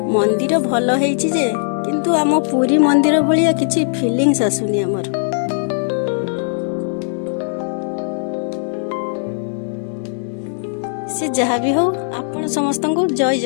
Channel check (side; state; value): right; silent; digital silence